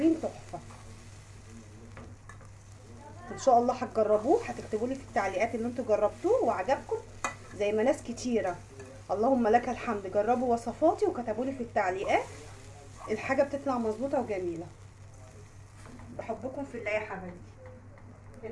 تحفه. ان شاء الله هتجربوه، هتكتبوا لي في التعليقات ان انتوا جربتوه وعجبكم زي ما ناس كتيره اللهم لك الحمد جربوا وصفاتي وكتبوا لي في التعليقات. الحاجه بتطلع مظبوطه وجميله. بحبكم في الله يا حبايبي.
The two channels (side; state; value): both; identical; correlation 1.00